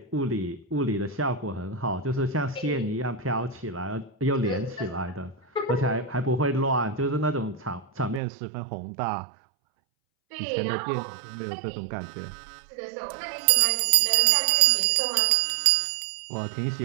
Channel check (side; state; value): left; drops out; at 8.2 s